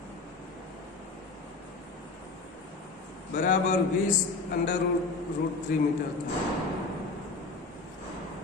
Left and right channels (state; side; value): quieter; right; 3.9 dB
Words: બરાબર 20√3 મીટર.